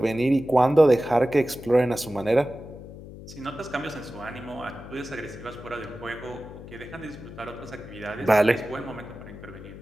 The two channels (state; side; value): noise; left; hum, 14 dB below the sound